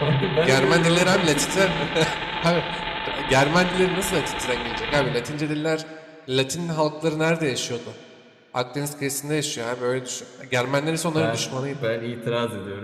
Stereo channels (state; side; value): identical; both; correlation 1.00